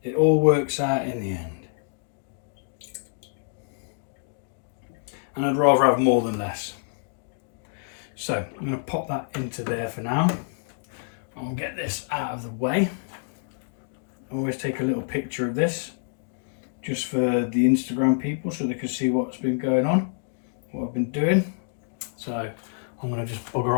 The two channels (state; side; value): silent; right; digital silence